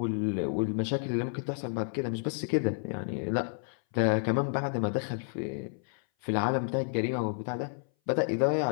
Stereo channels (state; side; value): silent; right; 57 dB below the other